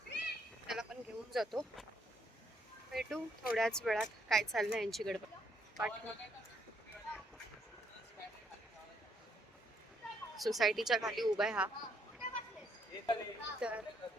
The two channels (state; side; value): normal; both; correlation 0.72